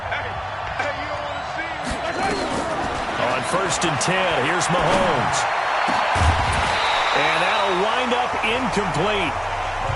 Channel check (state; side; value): identical; both; correlation 1.00